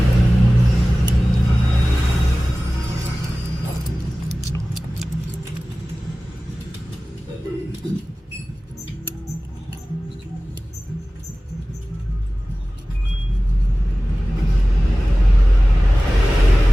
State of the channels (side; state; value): both; normal; correlation 0.97